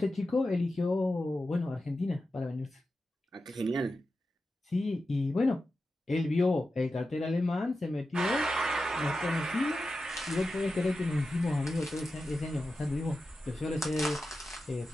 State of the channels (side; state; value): both; normal; correlation 0.91